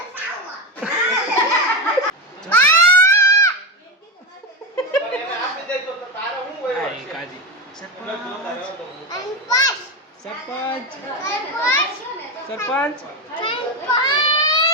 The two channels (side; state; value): both; normal; correlation 0.13